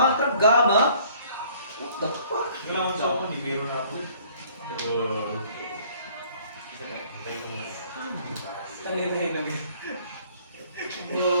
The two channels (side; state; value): both; inverted; correlation -0.57